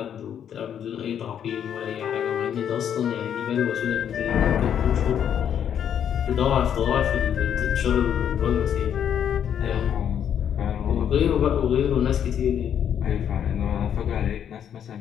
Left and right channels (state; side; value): quieter; right; 9.0 dB